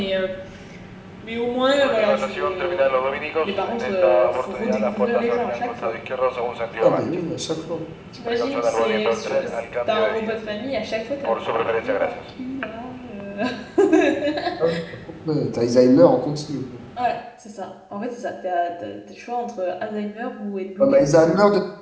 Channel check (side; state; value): both; identical; correlation 1.00